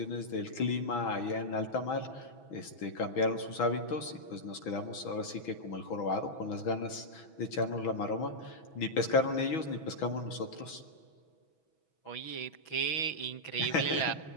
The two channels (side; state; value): right; late; 6.2 ms